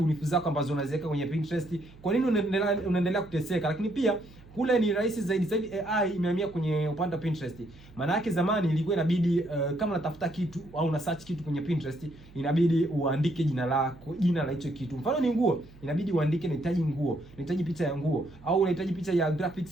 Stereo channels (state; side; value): noise; right; hum, 23 dB below the sound